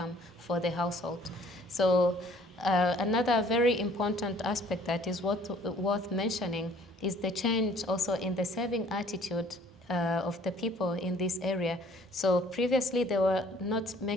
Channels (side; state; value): both; normal; correlation 0.56